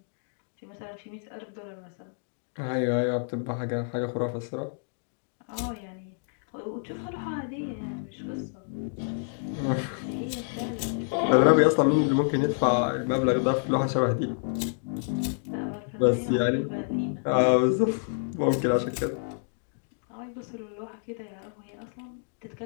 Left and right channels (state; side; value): silent; right; digital silence